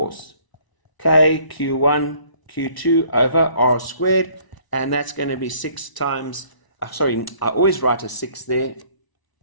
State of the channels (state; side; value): late; right; 1.0 ms